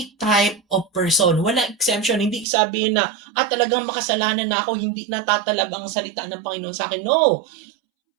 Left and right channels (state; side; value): drops out; left; at 2.5 s